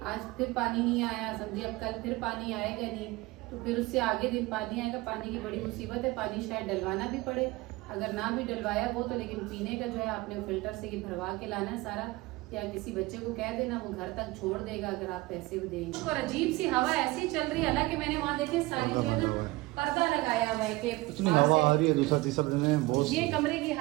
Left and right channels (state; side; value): quieter; left; 21.2 dB